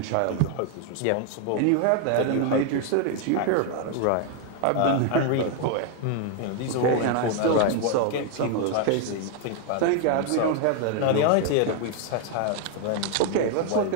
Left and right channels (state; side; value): different; both; correlation 0.00